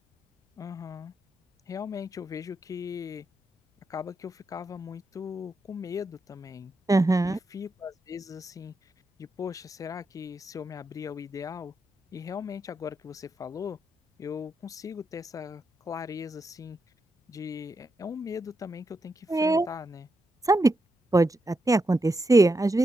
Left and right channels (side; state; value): both; normal; correlation 0.84